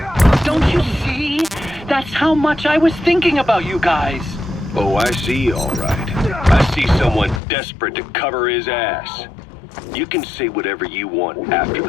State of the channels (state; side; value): drops out; right; at 7.4 s